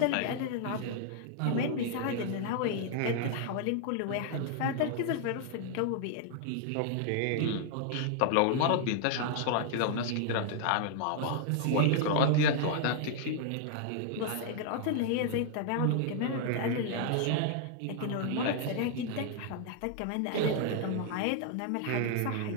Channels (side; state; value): both; different; correlation 0.00